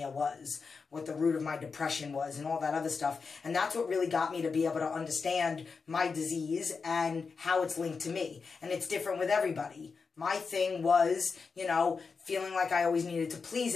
was, what the root of my depression was, and all that other stuff. And that's what really got me to be able to understand my disease and how it's linked to me. And it's different with everybody. My thing was, you know, feeling like I always needed to please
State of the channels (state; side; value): quieter; right; 5.0 dB